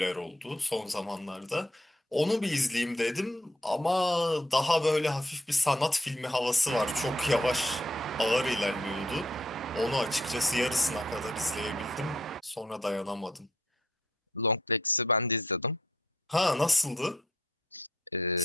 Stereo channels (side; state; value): both; normal; correlation 0.70